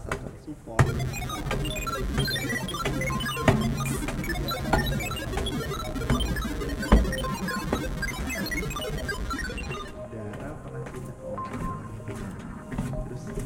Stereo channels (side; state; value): both; identical; correlation 1.00